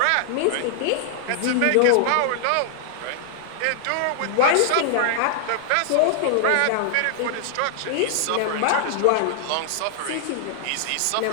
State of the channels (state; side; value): different; both; correlation -0.01